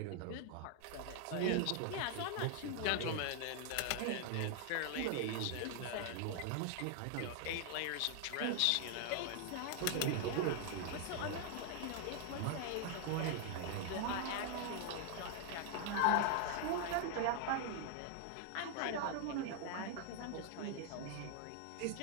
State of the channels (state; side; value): different; both; correlation 0.00